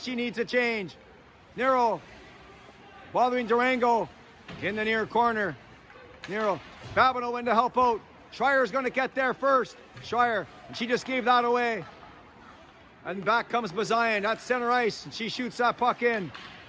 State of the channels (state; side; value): identical; both; correlation 1.00